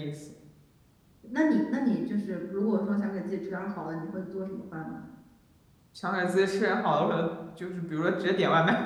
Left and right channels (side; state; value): both; identical; correlation 1.00